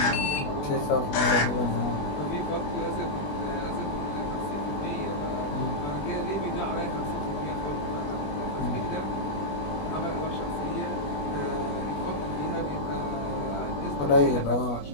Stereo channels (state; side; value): late; right; 21 ms